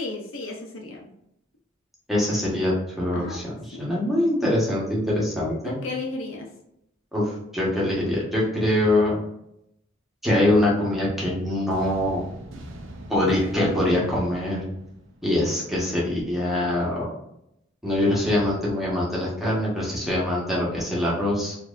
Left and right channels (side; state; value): both; normal; correlation 0.63